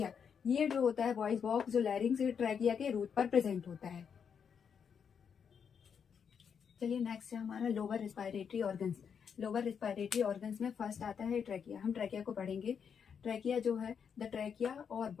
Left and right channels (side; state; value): right; quieter; 7.0 dB